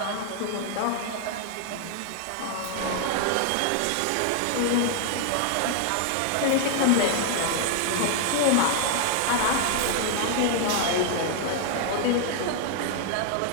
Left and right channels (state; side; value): different; both; correlation 0.00